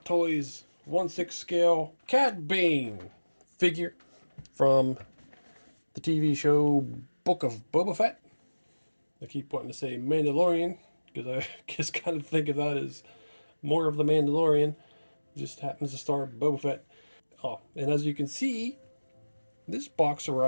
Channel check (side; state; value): both; inverted; correlation -1.00